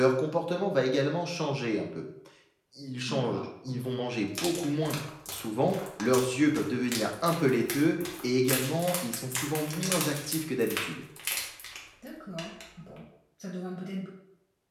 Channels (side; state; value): both; identical; correlation 1.00